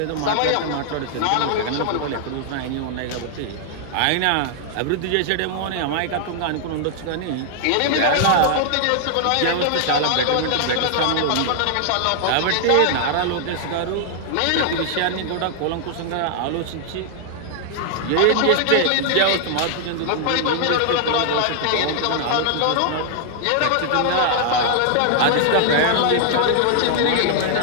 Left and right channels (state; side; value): different; both; correlation 0.00